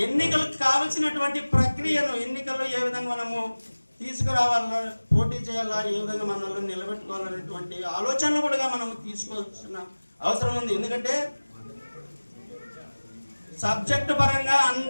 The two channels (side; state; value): both; inverted; correlation -1.00